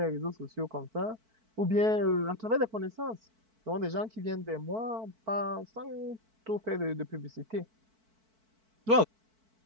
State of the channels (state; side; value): late; left; 4.5 ms